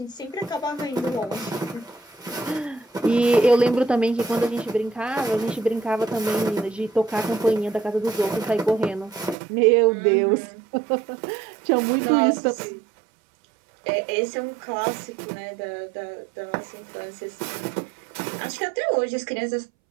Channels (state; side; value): drops out; left; at 9.3 s